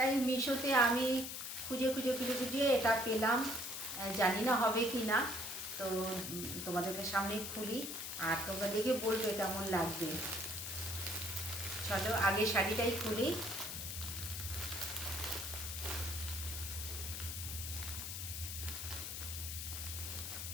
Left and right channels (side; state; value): left; noise; hiss, 5 dB below the sound